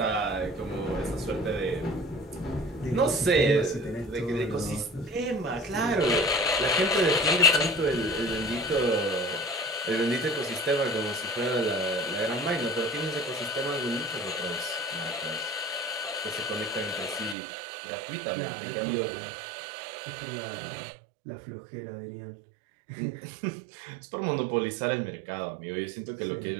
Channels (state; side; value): drops out; left; at 17.4 s